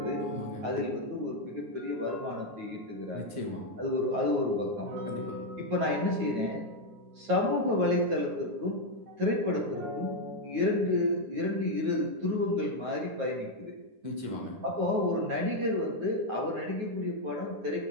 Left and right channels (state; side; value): late; left; 9.3 ms